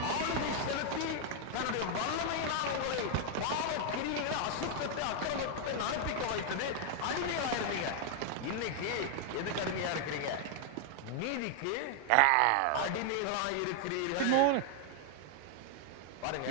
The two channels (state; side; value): different; both; correlation 0.00